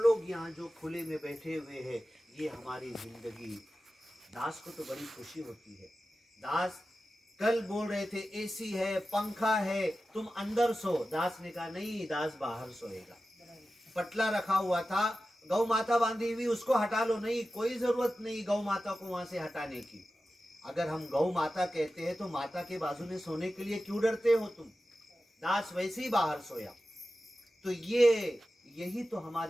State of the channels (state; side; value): normal; both; correlation 0.93